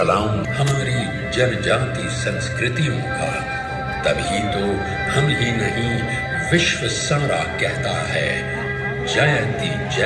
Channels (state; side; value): identical; both; correlation 1.00